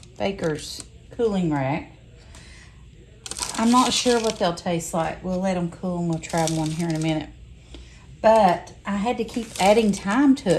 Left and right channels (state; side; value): identical; both; correlation 1.00